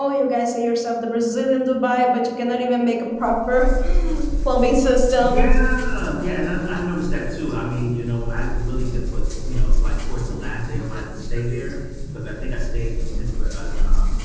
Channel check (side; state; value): both; identical; correlation 1.00